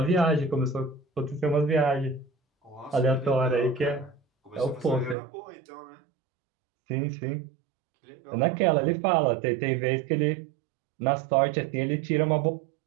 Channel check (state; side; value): drops out; left; at 5.2 s